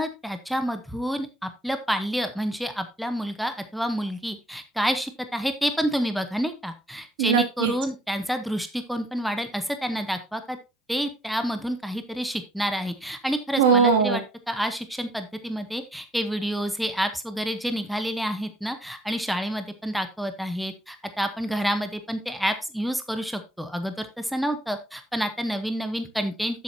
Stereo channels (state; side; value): normal; both; correlation 0.62